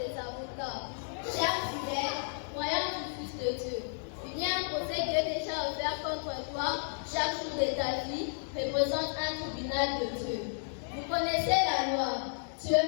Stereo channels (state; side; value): silent; right; 56 dB below the other